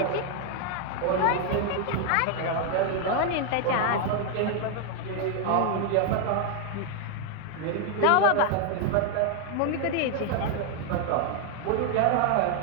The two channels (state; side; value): different; both; correlation 0.01